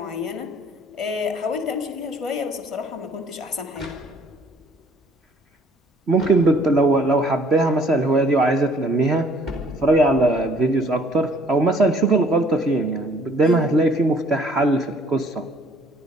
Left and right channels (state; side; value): normal; both; correlation 0.59